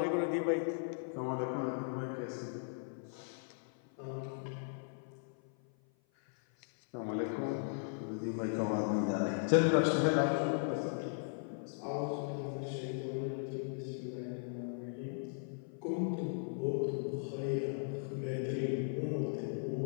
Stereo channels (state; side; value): silent; right; 53 dB below the other